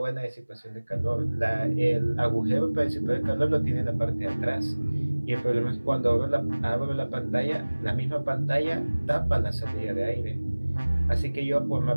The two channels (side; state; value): both; inverted; correlation -1.00